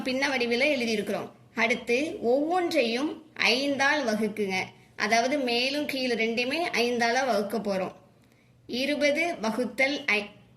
பின்ன வடிவில் எழுதியிருக்கிறோம். அடுத்து ஒவ்வொன்றையும் 5ஆல் வகுக்குங்க, அதாவது மேலும் கீழே ரெண்டையுமே 5ஆல் வகுக்க போகிறோம். 20 வகுத்தல்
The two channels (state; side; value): identical; both; correlation 1.00